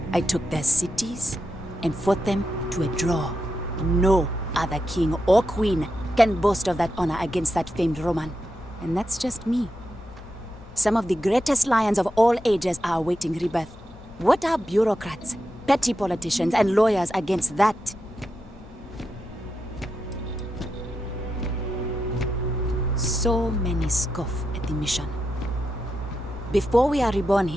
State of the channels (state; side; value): normal; both; correlation 0.87